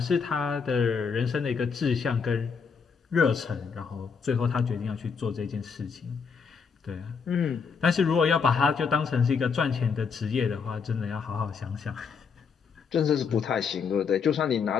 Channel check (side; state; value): right; quieter; 5.8 dB